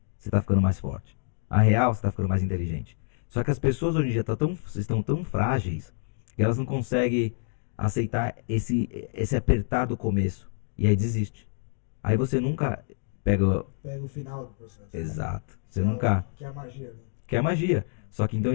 você tá ficando mais forte. A real, você tá ficando mais inteligente. Só que as pessoas hoje em dia estão tão frágeis que elas não conseguem aceitar esse apertar do começo. E aí desiste. Aí você nunca pega. Pega o final do processo. Exato. Você Que é nunca. Que é a magia, né? Que é magia. Só que então a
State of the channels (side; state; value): right; silent; 60 dB below the other